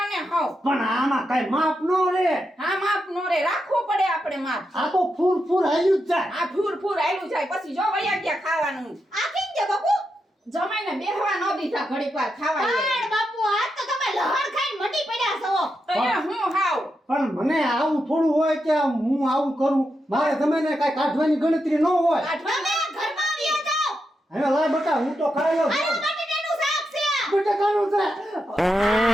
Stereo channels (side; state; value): both; normal; correlation 0.85